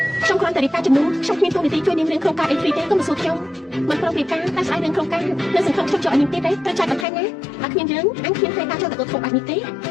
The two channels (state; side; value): drops out; right; at 7.1 s